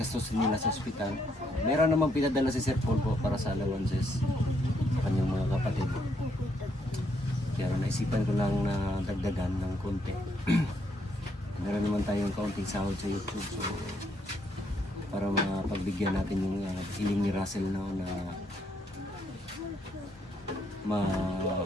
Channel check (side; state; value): both; normal; correlation 0.73